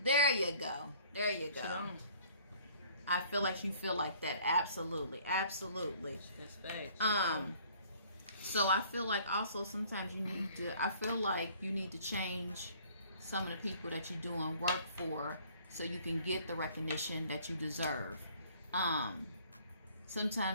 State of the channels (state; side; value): inverted; both; correlation -0.55